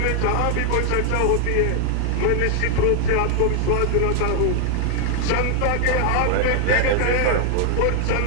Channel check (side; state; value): both; different; correlation 0.00